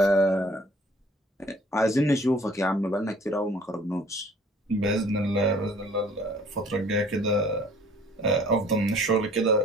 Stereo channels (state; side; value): normal; both; correlation 0.54